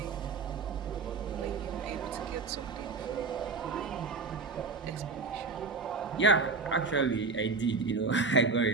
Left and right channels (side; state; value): left; quieter; 4.4 dB